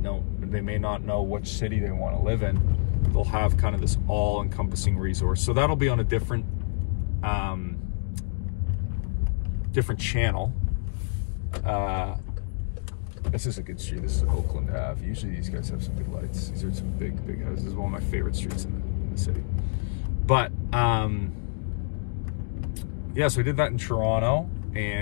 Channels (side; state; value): right; silent; digital silence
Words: not know which city they want to live in. They'll have kind of this all-encompassing resource. So that'll be on a different channel. This is a good street. This is Oakland Ave. Usually these guys have some big lights. These are some big houses. This is one of my favorite streets in the city. But yeah, so I did that in Toronto,